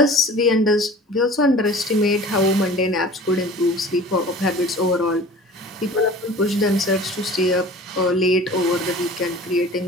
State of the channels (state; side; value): normal; both; correlation 0.42